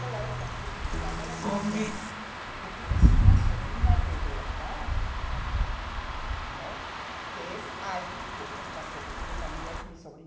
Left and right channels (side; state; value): both; identical; correlation 1.00